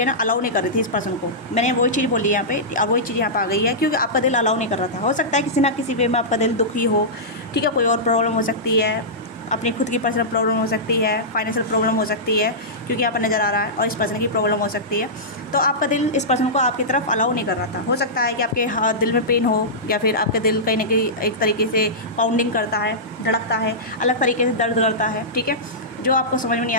ना अलाउ नहीं कर रही थी इस पर्सन को। मैंने वही चीज़ बोली यहाँ पे और वही चीज़ यहाँ पे आ गई है, क्योंकि आपका दिल अलाउ नहीं कर रहा था। हो सकता है किसी ना किसी वे में आपका दिल दुखी हो। ठीक है, कोई और प्रॉब्लम हो सकती है, अपनी खुद की पर्सनल प्रॉब्लम हो सकती है, फाइनेंशियल प्रॉब्लम हो सकती है, क्योंकि यहाँ पर नज़र आ रहा है, और इस पर्सन की प्रॉब्लम हो सकती है। तो आपका दिल इस पर्सन को आपकी तरफ अलाउ नहीं कर रहा था। हो सकता है कि आपके दिल में पेन हो, या फिर आपके दिल कहीं ना कहीं एक तरीके से पाउंडिंग करता है, धड़कता है, अलग तरीके से दर्द करता है। ठीक है, जो आपको समझ में नहीं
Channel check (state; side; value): normal; both; correlation -0.15